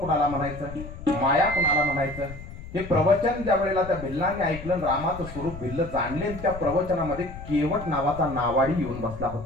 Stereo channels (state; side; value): noise; left; rumble, 12 dB below the sound